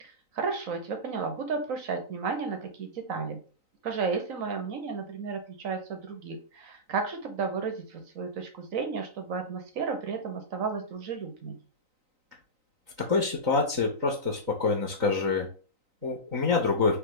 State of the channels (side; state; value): left; late; 3.9 ms